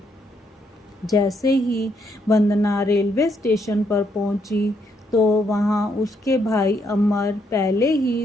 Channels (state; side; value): normal; both; correlation 0.74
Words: जैसे ही वंदना रेलवे स्टेशन पर पहुंची तो वहां उसके भाई अमर पहले